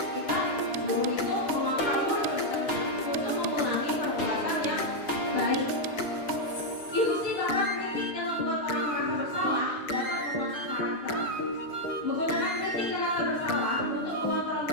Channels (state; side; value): late; right; 6.7 ms